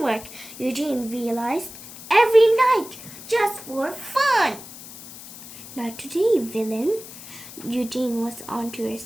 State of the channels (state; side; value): noise; left; hiss, 15 dB below the sound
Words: Eugene realized, every night, just for fun. Not today, villain. Eugene was on to her